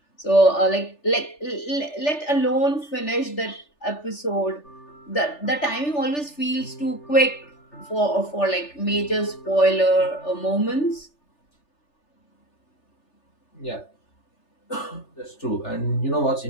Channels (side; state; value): right; late; 3.4 ms